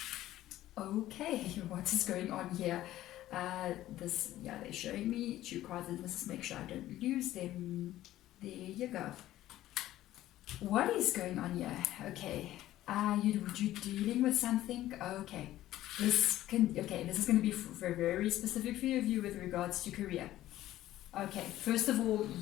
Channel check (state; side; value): quieter; right; 14.4 dB